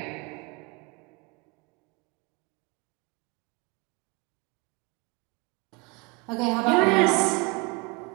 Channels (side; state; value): left; quieter; 27.1 dB